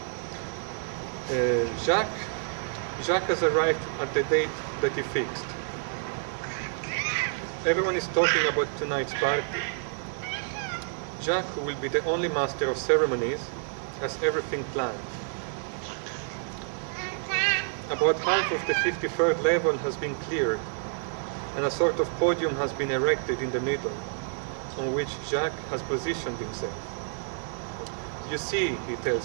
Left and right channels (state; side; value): silent; left; 59 dB below the other